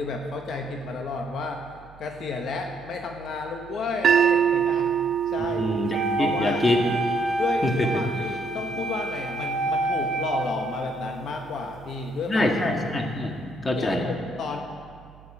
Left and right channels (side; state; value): right; noise; hum, 22 dB below the sound